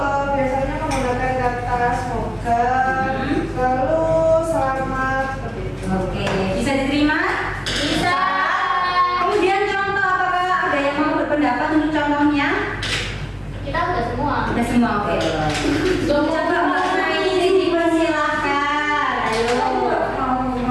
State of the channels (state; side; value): identical; both; correlation 1.00